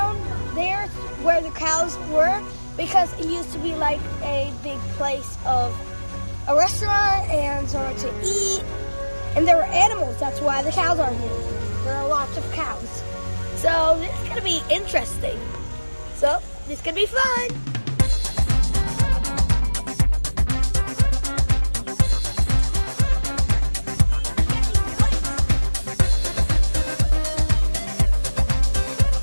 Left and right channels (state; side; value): inverted; both; correlation -1.00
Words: there where the cows were, because it used to be like a big place of a restaurant and somewhere to eat. And there were animals, that's why the cows are here. There are lots of cows. So this is gonna be interesting. So this could be fun.